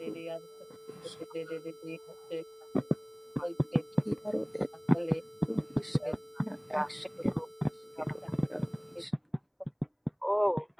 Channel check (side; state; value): both; identical; correlation 1.00